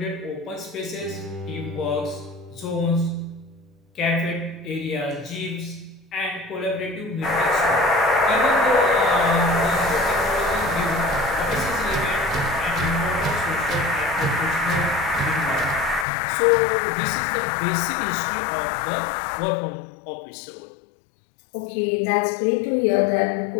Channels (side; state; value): right; drops out; at 16.1 s